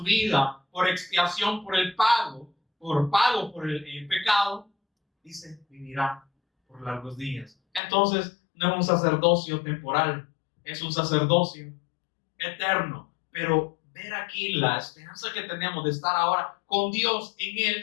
vida por expiación, por el pago, por el pecado, dice, vivirá por largos días. Entonces, no es un sacerdocio temporal, es un sacerdocio eterno. Pero ver aquí la esperanza que tenemos de estar ahora con Dios en Él,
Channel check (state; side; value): drops out; right; at 7.8 s